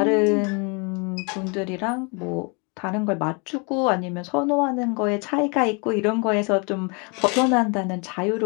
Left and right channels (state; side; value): quieter; right; 33.0 dB